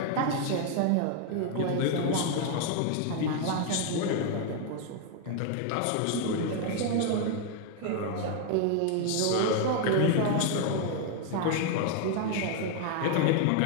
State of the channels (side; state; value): both; different; correlation 0.00